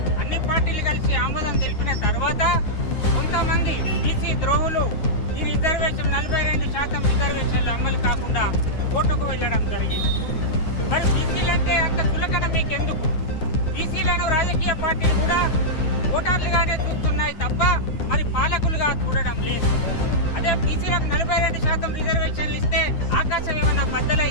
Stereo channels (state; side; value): late; right; 9.6 ms